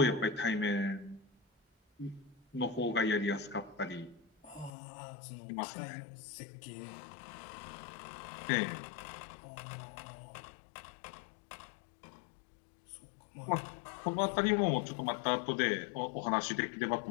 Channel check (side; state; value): right; drops out; at 4.7 s